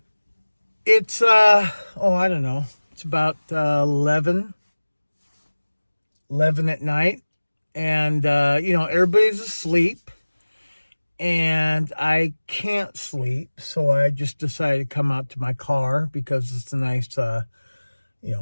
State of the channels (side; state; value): both; inverted; correlation -1.00